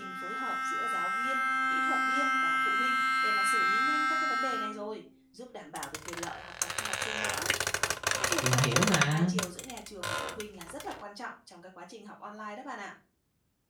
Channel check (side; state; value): both; identical; correlation 1.00